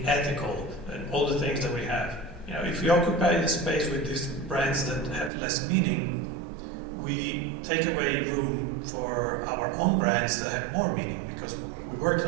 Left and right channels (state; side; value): drops out; left; at 5.3 s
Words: ethical, and all the things that we have. If we occupy the space with these brands that have less meaning, we take away room for our own brands that have more meaning, because we worked